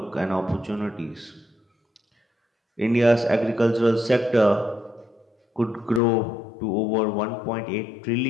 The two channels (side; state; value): right; drops out; at 6.0 s